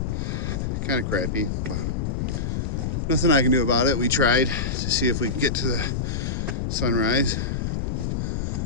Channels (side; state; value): left; noise; rumble, 1 dB below the sound